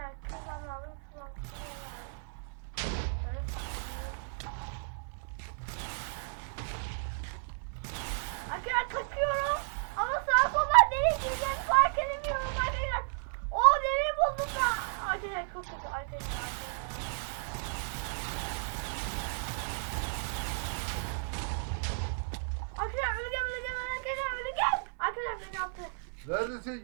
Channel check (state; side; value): silent; left; 56 dB below the other